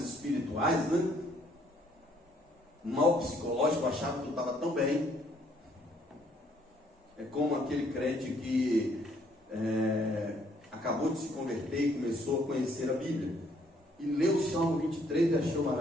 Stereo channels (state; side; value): normal; both; correlation 0.66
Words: espirituais, né? O mal psicológico achava que eu estava tão bem. É como aquele crente que acabou de se converter e começou a conhecer a Bíblia, e leu o Salmo 23 e achou